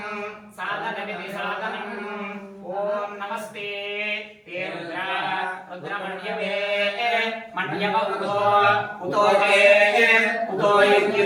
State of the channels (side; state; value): both; identical; correlation 1.00